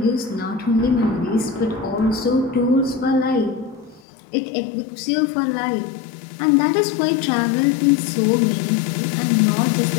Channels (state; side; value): drops out; right; at 4.0 s